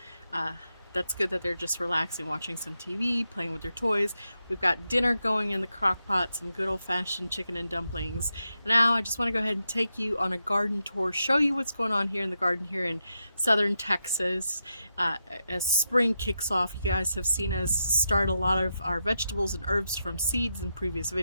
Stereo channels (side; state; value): both; inverted; correlation -0.86